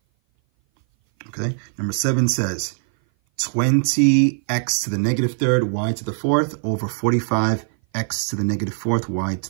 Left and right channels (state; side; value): silent; left; 58 dB below the other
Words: Okay? Number 7 says 20x to the negative third, y to the fourth, over 45x to the negative fourth, y